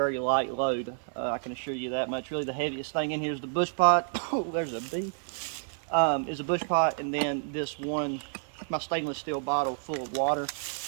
light load. I can assure you that much. Really the heaviest thing in here is the bush pot. Oh, there's a bee. Is a bush pot, and then this one, my stainless steel bottle full of water.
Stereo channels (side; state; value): left; silent; digital silence